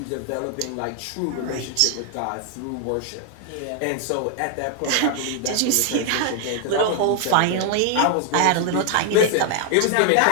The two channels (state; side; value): different; both; correlation 0.00